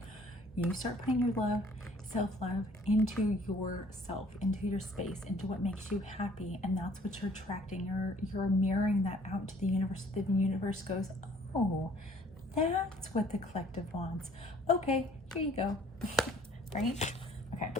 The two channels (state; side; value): normal; both; correlation 0.57